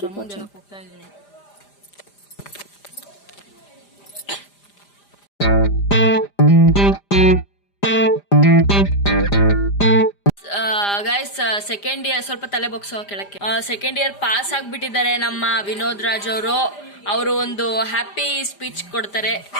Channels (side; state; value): right; late; 5.0 ms